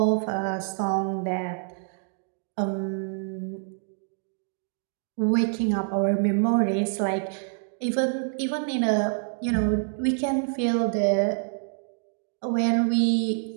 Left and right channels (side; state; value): left; silent; digital silence